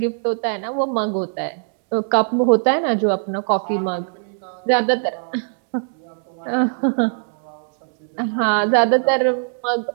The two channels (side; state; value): left; silent; 65 dB below the other